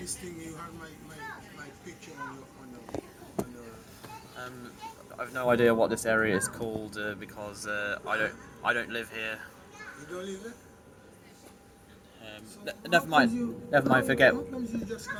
thing, you had my picture on your I've no idea what this area is called because I don't live here. You don't live there? Never mind. Never mind. Forget How comes you just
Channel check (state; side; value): identical; both; correlation 1.00